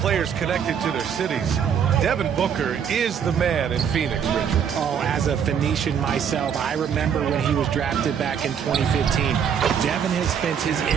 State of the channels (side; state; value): left; quieter; 7.8 dB